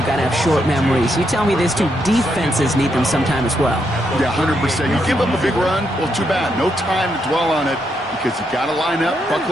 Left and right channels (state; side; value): normal; both; correlation 0.79